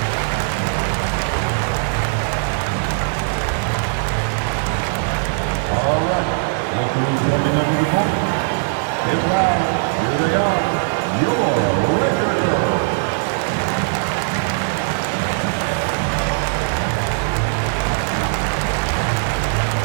All right, look who's coming under the court. Get loud. Here they are, your Laker girls.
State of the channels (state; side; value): silent; left; 66 dB below the other